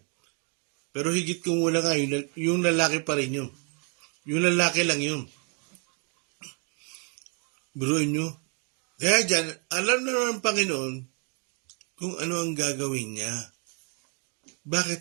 Pero higit kumulang nga, yung lalaki pa rin yun. Yung lalaki lang yun. Biruin nyo. Kaya dyan, alam na naman ng Panginoon kung ano ang gagawin niya.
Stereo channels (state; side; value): quieter; left; 38.1 dB